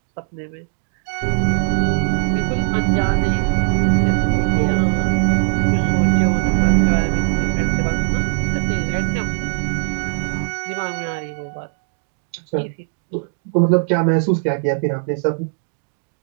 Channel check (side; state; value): left; silent; digital silence